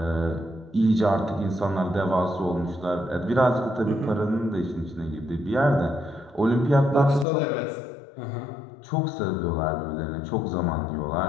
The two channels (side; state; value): right; drops out; at 7.2 s